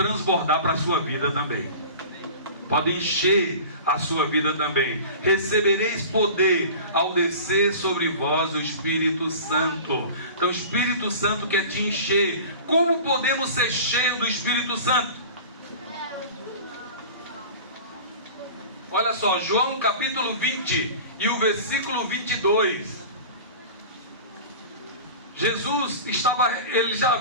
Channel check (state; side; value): inverted; both; correlation -0.37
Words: para a sua vida também. Pode encher a sua vida também. Recebereis poder ao descer sobre vós o Espírito Santo. Então o Espírito Santo quer te encher. Como podemos ser cheios do Espírito Santo? Olha só, João capítulo 20 e o versículo 22. Jesus ele já